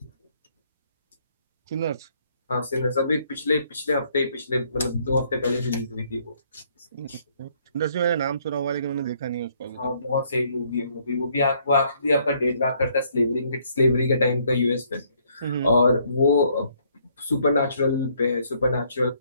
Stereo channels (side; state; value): both; inverted; correlation -0.67